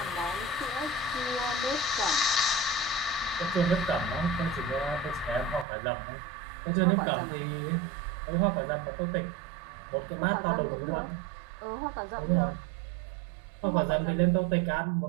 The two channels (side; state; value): left; drops out; at 5.7 s